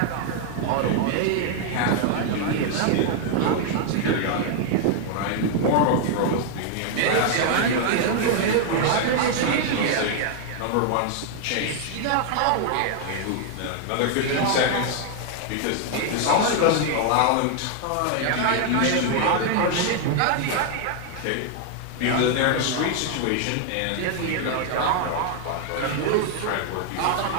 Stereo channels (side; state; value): both; different; correlation 0.00